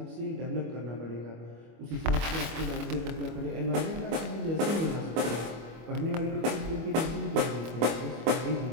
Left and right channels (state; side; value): late; left; 25 ms